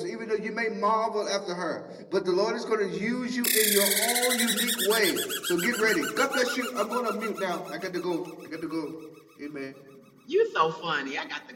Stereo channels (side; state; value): both; identical; correlation 1.00